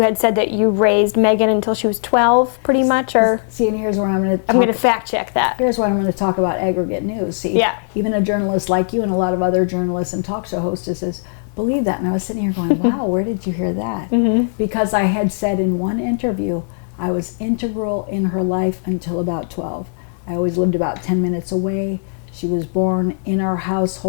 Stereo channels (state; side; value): silent; right; digital silence